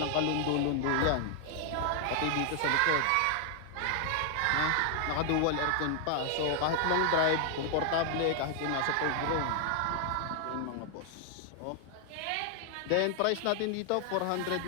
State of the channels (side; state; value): both; different; correlation 0.00